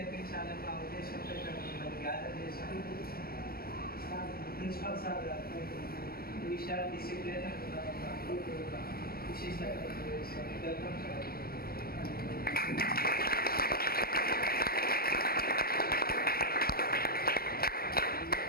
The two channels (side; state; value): right; late; 0.44 ms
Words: మా ఉద్దేశంతో ఇక్కడ మిమ్మల్ని గ్యాదర్ చేశాను. ప్రిన్సిపల్ సార్ గారు ఈ విషయాలు డిసిప్లిన్ విశిష్ట welcome sir.